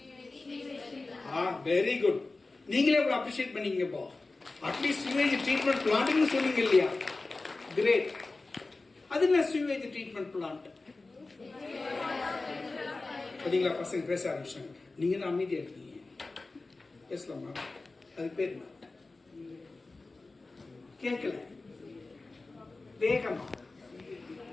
Very good. நீங்களே இவ்வளவு அப்ரிஷியேட் பண்ணீங்க. இப்போ அட்லீஸ்ட் சிவேஜ் ட்ரீட்மெண்ட் பிளான்ட்னு சொன்னீங்க இல்லையா? கிரேட். அது என்ன சிவேஜ் ட்ரீட்மெண்ட் பிளான்ட்? பாத்தீங்களா, பசங்க பேச ஆரம்பிச்சாங்க. நீங்க தான் அமைதியா இருக்கீங்க, பேசலாமா? அது பேர் என்ன? கேட்கல, வேகமா.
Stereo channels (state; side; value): quieter; right; 3.4 dB